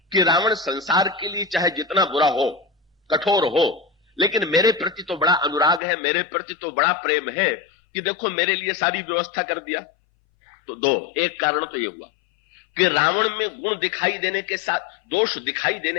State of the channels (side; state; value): right; drops out; at 5.8 s